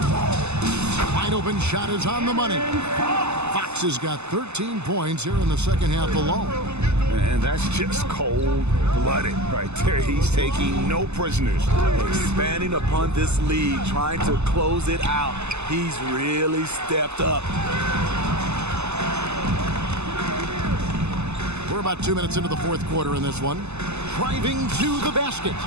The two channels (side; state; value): left; late; 0.81 ms